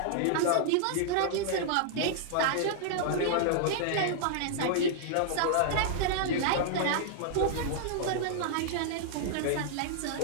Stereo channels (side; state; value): both; different; correlation -0.01